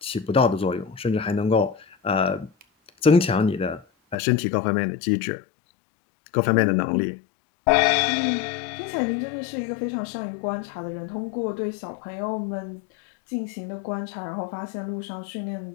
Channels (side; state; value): right; drops out; at 4.2 s